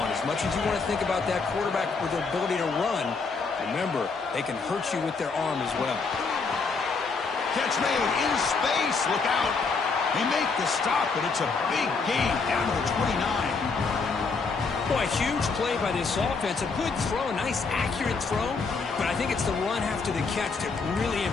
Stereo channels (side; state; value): right; quieter; 4.6 dB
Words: As much as you want to think about that quarterback with their ability to run, remember, they can hurt you with their arm as well. Catch made in space. Look out. They make the stop, but it's a big gain down to the 29. Boy, a huge play by this offense. A good throw, a nice accurate throw. But I think it's the run after the catch that really